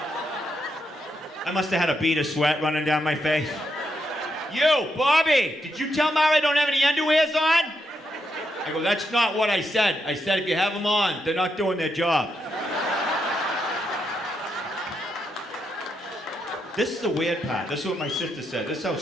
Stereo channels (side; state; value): both; normal; correlation 0.81